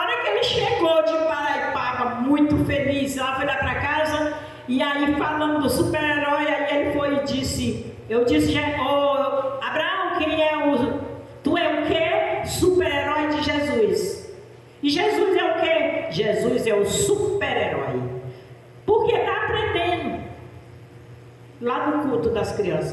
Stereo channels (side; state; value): both; identical; correlation 1.00